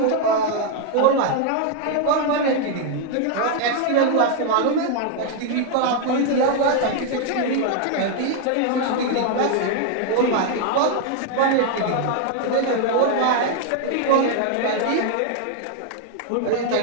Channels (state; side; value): different; both; correlation 0.00